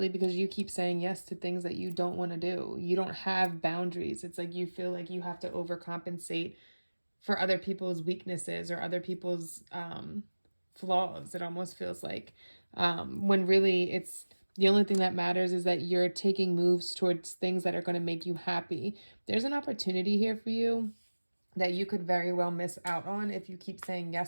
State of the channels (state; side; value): inverted; both; correlation -1.00